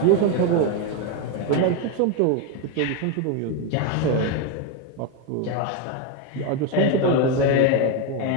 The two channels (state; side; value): different; both; correlation 0.02